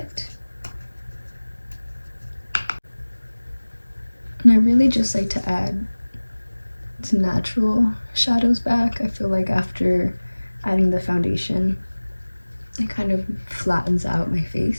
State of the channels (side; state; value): both; inverted; correlation -1.00